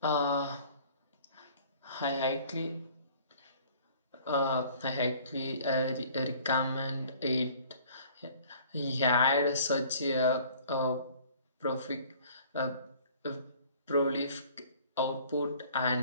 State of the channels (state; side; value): inverted; both; correlation -0.52